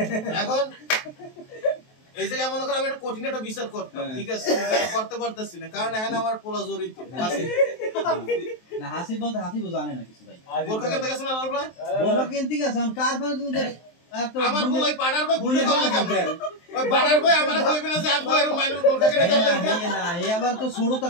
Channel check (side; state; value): right; late; 23 ms